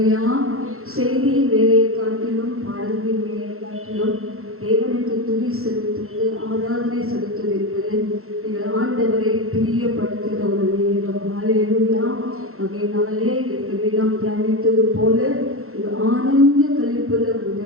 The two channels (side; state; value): left; late; 0.62 ms